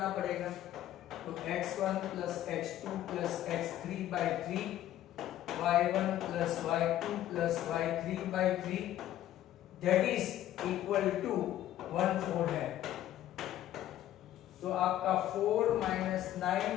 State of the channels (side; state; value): right; quieter; 12.9 dB